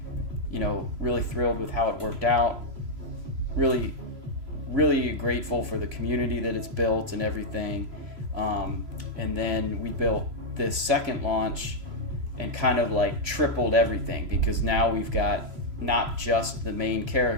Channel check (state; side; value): late; left; 2.9 ms